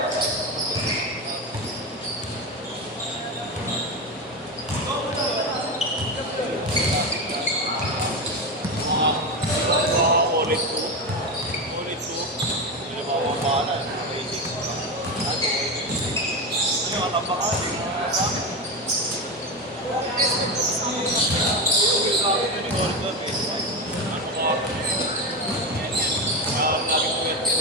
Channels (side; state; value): both; normal; correlation 0.17